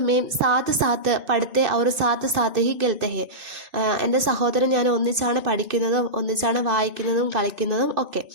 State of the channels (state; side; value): late; left; 2.5 ms